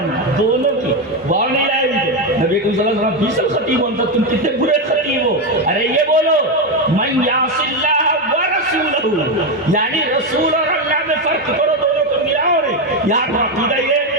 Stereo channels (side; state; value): both; normal; correlation 0.09